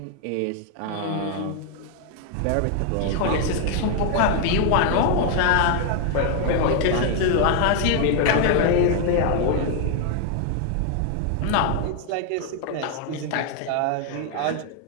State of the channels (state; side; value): different; both; correlation 0.00